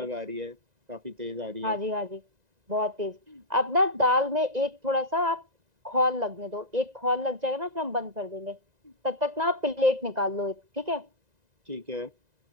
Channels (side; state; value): left; late; 2.0 ms